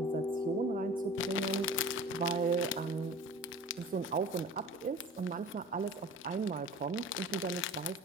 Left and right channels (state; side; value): normal; both; correlation 0.40